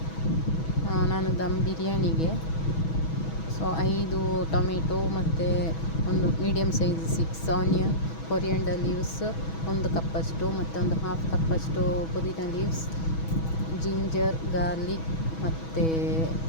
ನಾನು ದಮ್ ಬಿರಿಯಾನಿಗೆ 5 ಟೊಮೆಟೊ ಮತ್ತು ಒಂದು medium size 6 onion, coriander leaves 1 ಕಪ್ಪಷ್ಟು ಮತ್ತು ಒಂದು ಹಾಫ್ ಕಪ್ಪಷ್ಟು ಪುದೀನ ಲೀವ್ಸ್, ಜಿಂಜರ್, ಗಾರ್ಲಿಕ್ ಮತ್ತು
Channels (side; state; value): right; late; 6.2 ms